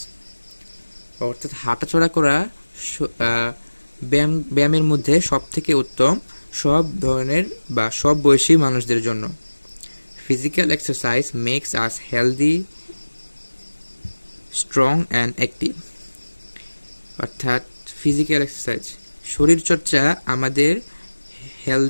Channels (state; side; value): inverted; both; correlation -1.00